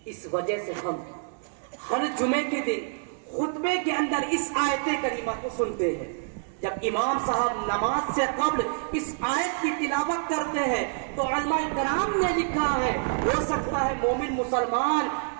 اس وجہ سے ہم ہر جمعے کے دن خطبے کے اندر اس آیت کریمہ کو سنتے ہیں۔ جب امام صاحب نماز سے قبل اس آیت کی تلاوت کرتے ہیں تو علماء کرام نے لکھا ہے، ہو سکتا ہے مومن مسلمان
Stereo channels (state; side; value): silent; left; 60 dB below the other